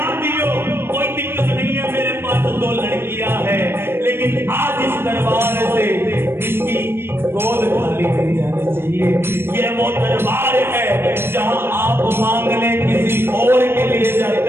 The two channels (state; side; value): late; left; 0.11 ms